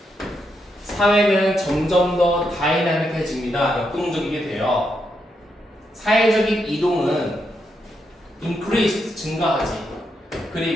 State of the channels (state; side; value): normal; both; correlation 0.81